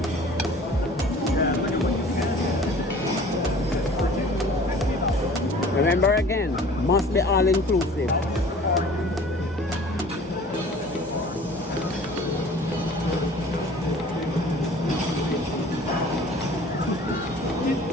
Remember again, must be all inclusive.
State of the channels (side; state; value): both; normal; correlation 0.47